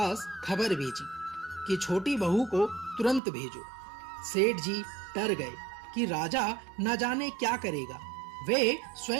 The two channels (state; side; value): drops out; left; at 3.2 s